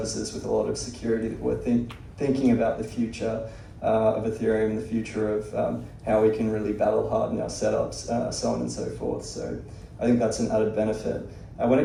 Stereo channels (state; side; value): identical; both; correlation 1.00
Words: with a lot of security, that we're thinking about the future of Ethereum, the future of how we can really battle harden our setups, so on and so forth. So I think that's an added benefit. When